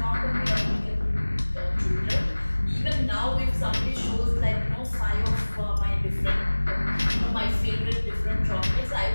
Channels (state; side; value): inverted; both; correlation -1.00